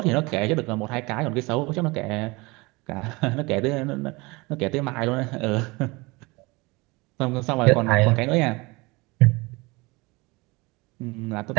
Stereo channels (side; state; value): left; quieter; 24.5 dB